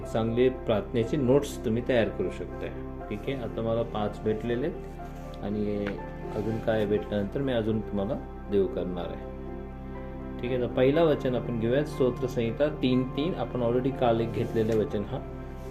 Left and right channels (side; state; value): both; identical; correlation 1.00